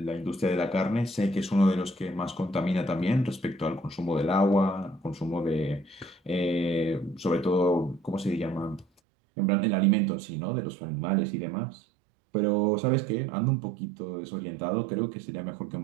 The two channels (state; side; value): drops out; left; at 8.8 s